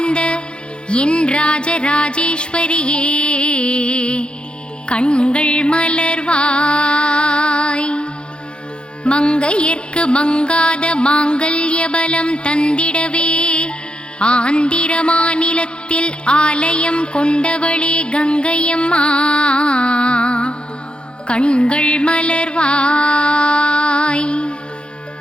என் ராஜராஜேஸ்வரியே கண்கள் மலர்வாய். மங்கையர்க்கு மங்காத மாங்கல்ய பலம் தந்திடவே ஆந்திர மாநிலத்தில் ஆலயம் கொண்டவளே கங்கையம்மா கண்கள் மலர்வாய்.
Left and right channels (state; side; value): late; right; 0.054 ms